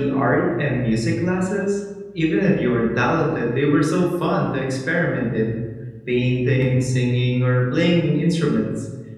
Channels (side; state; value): both; identical; correlation 1.00